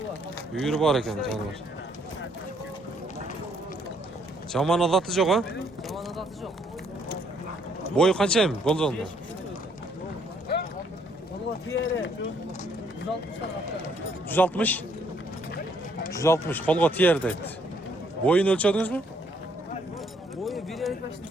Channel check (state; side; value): normal; both; correlation 0.68